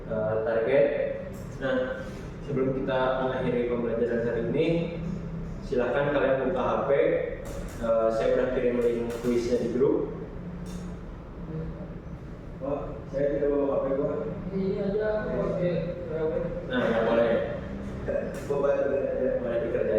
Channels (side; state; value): both; identical; correlation 1.00